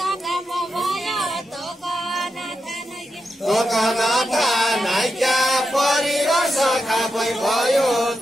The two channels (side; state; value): both; normal; correlation 0.86